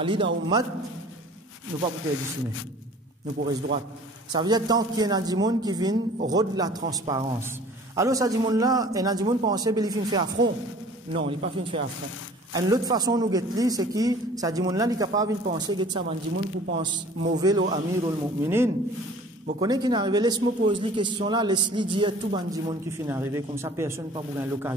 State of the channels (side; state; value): both; normal; correlation 0.48